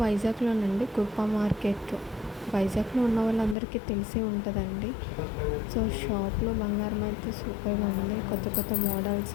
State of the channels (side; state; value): right; drops out; at 3.6 s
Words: వైజాగ్లోనండి, కృపా మార్కెట్. వైజాగ్లో ఉన్న వాళ్ళందరికీ తెలిసే ఉంటుందండి. సో షాప్లో బంగారం అయితే సూపర్గా ఉంది. కొత్త కొత్త మోడల్స్